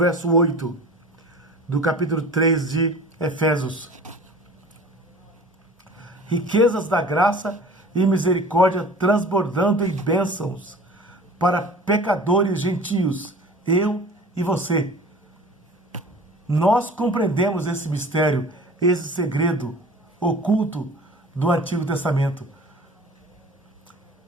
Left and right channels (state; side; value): normal; both; correlation 0.42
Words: 8 do capítulo 3 de Efésios. Riquezas da graça e misericórdia transbordando em bênçãos para pecadores gentios, eu e você. Nós compreendemos esse mistério, esse segredo oculto do Antigo Testamento.